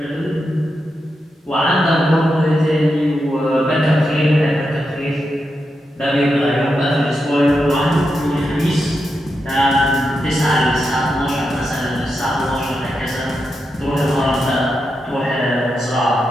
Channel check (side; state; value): both; normal; correlation 0.86